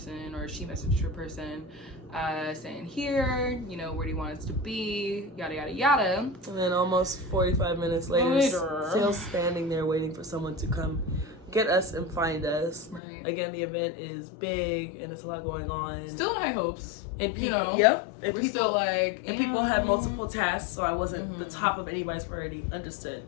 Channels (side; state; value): right; drops out; at 13.0 s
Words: or she messaged her person, saying, here, you know, where do you want us to be? Yada, yada, yada. And then almost 45 minutes later, still standing there waiting for someone to come get us and find us. Right. Again, the event is big and it's a lot going on. Still in high hopes. And people, you know, yep. And we're people, still like, and people had multiple tasks, so I wasn't the top of anybody's priority. Understood,